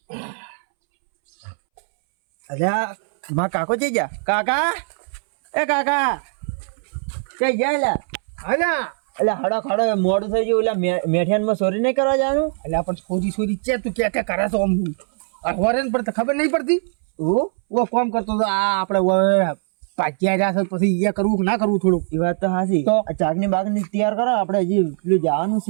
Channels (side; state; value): left; silent; 65 dB below the other